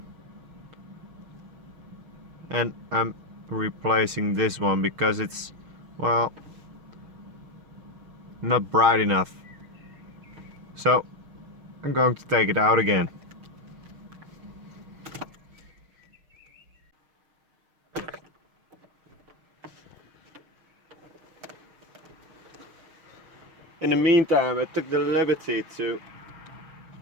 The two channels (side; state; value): left; late; 6.4 ms